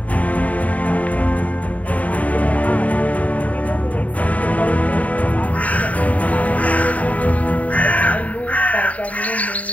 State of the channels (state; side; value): late; right; 0.070 ms